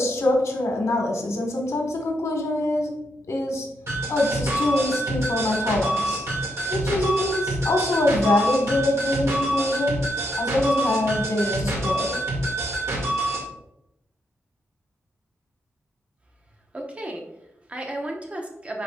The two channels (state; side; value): normal; both; correlation 0.79